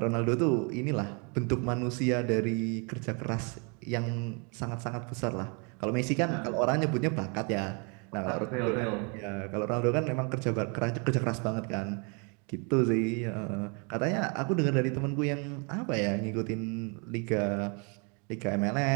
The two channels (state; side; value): quieter; left; 34.7 dB